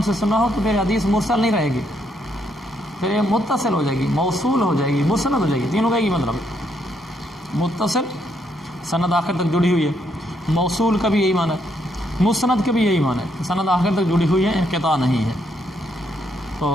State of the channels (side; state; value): both; normal; correlation 0.74